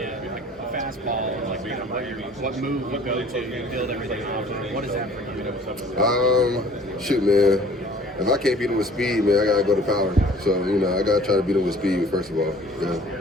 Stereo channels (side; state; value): both; normal; correlation 0.51